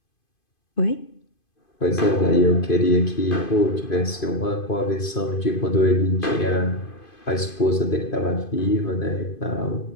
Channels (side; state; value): right; late; 2.5 ms